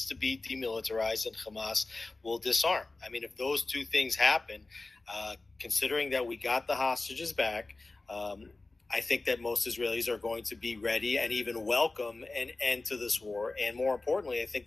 to be demilitarized and Hamas will disarm. I mean, if those two things happen, considering that we got the hostages back, I think that most Israelis are going to be ready and even welcome an end to this war. And more importantly, I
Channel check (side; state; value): right; quieter; 3.3 dB